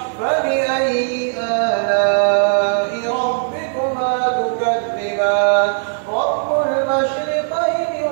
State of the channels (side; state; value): left; silent; 67 dB below the other